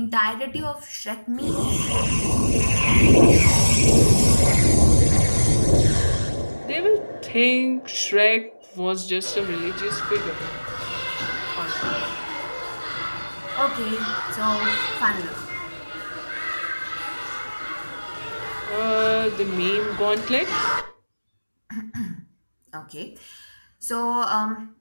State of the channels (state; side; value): inverted; both; correlation -1.00